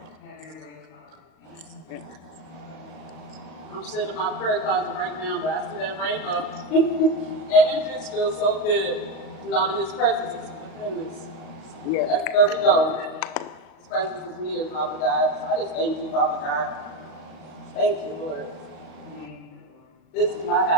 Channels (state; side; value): late; right; 38 ms